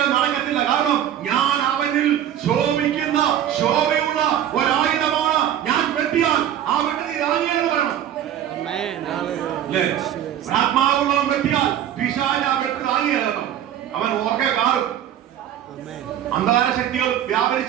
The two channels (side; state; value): left; quieter; 10.7 dB